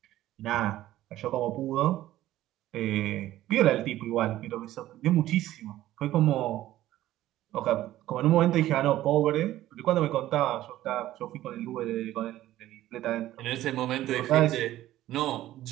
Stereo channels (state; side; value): quieter; left; 14.4 dB